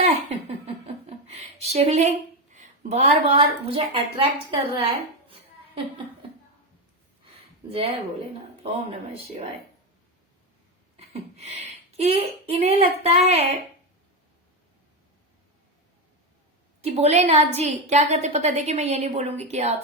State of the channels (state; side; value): normal; both; correlation 0.11